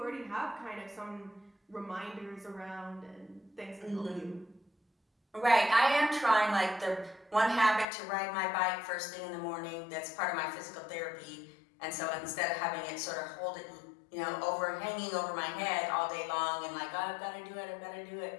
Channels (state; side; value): drops out; right; at 7.9 s